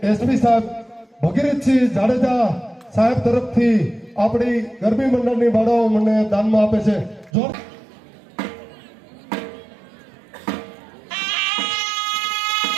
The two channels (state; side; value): drops out; left; at 7.3 s